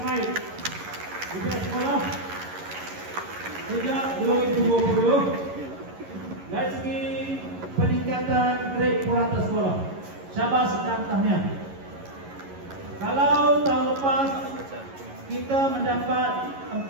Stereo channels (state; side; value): late; left; 11 ms